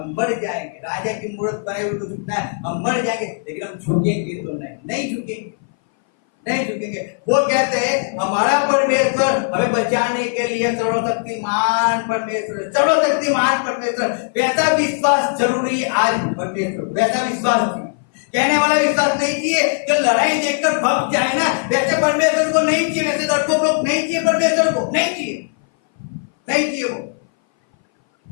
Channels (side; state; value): right; silent; 60 dB below the other